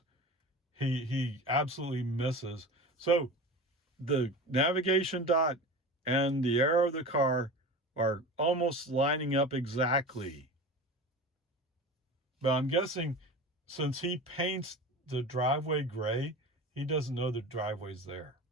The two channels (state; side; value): normal; both; correlation 0.32